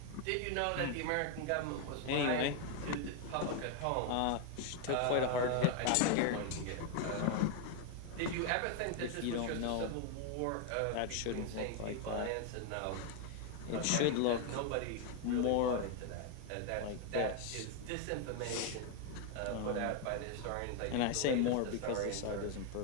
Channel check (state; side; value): different; both; correlation 0.01